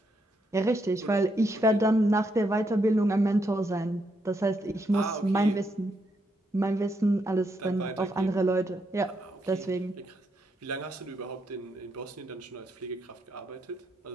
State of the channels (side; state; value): both; normal; correlation 0.78